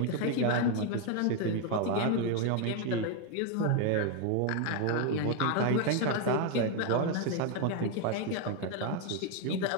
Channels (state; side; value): different; both; correlation 0.01